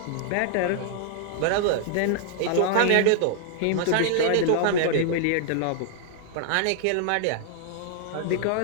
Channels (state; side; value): different; both; correlation -0.01